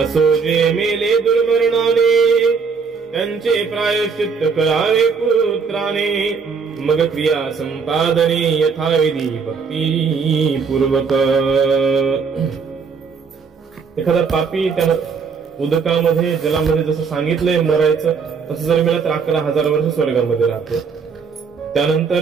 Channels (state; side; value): quieter; left; 5.5 dB